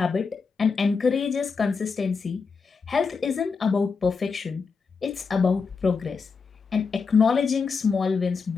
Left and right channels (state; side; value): quieter; right; 5.1 dB